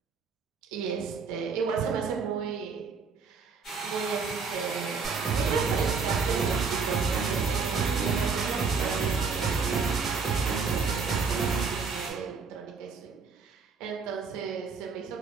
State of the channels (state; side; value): quieter; left; 5.1 dB